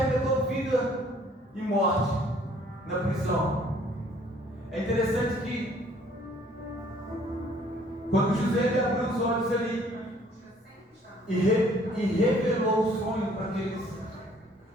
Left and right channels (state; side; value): normal; both; correlation 0.59